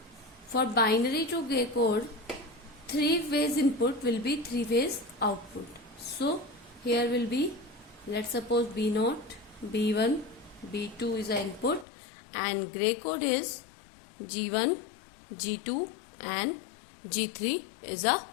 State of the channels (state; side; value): drops out; right; at 11.9 s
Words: For binary to gray code, 3 ways input will be 3 ways output. So here will be, let's suppose B0, B1, B2 is the input and gray code is G1, G2 and G3 is a